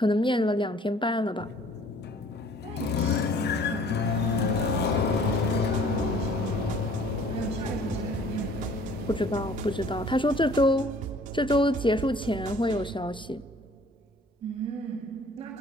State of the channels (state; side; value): normal; both; correlation 0.53